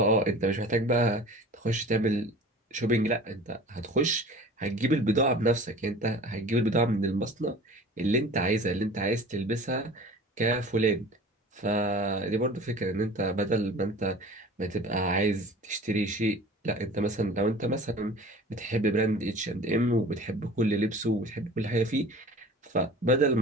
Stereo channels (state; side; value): normal; both; correlation 0.42